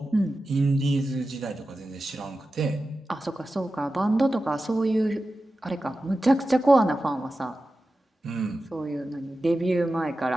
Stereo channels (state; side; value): normal; both; correlation 0.93